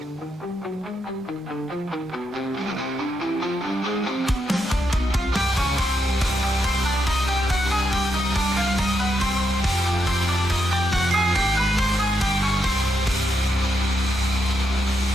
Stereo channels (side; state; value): both; normal; correlation 0.81